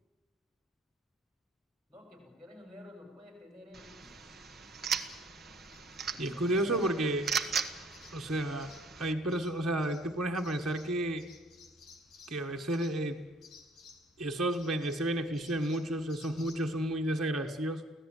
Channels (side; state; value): both; normal; correlation 0.57